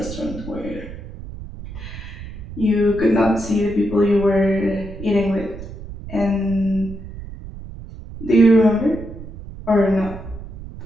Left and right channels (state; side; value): noise; right; rumble, 12 dB below the sound